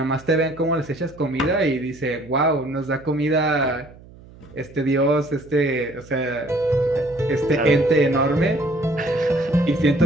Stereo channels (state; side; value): noise; right; hum, 22 dB below the sound